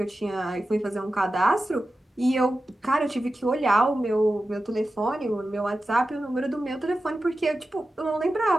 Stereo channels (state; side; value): normal; both; correlation 0.93